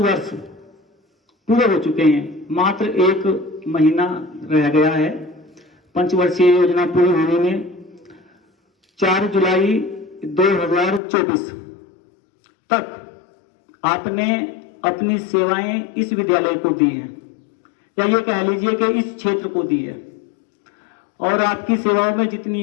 पूरे हो चुके हैं। मात्र 1 महीना रह गया है पंचवर्षीय योजना पूरी होने में। 4 जुलाई 2024 तक आपने अपनी सेवाएं इस विद्यालय को दी हैं, या ये कह लीजिए कि इस क्षेत्र को दी है। और आपकी सेवाओं में जितनी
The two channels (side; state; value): right; drops out; at 11.0 s